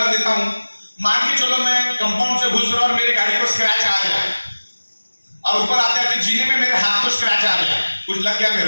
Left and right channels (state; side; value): inverted; both; correlation -1.00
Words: देता हूं। मान के चलो मैं कंपाउंड से घुस रहा और मेरी गाड़ी को स्क्रैच आ गया और ऊपर आते आते जीने में मेरे हाथ को स्क्रैच आ गया, कुछ लग गया